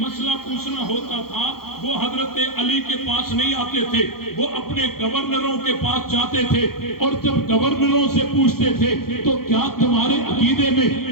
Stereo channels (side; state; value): right; late; 0.94 ms